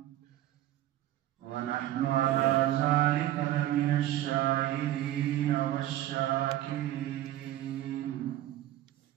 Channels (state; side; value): quieter; left; 13.8 dB